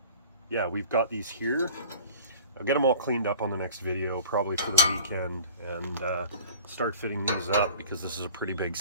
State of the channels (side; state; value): both; inverted; correlation -0.43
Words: yeah, we've got these here. I'll get them all cleaned up on the next video, probably for the weekend, and start fitting these up, because this is a pretty big